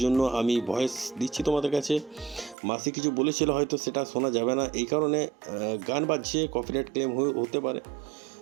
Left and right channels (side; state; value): left; drops out; at 2.6 s